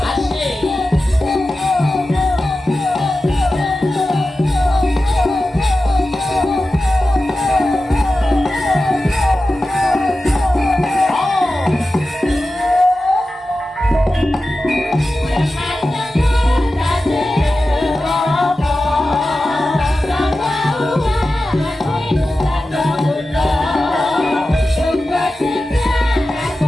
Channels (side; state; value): both; normal; correlation 0.94